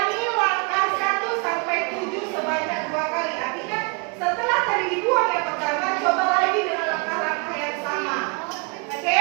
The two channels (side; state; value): left; quieter; 33.0 dB